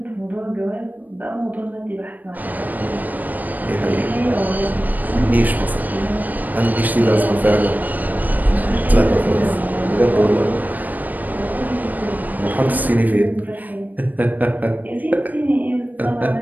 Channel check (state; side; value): late; left; 0.083 ms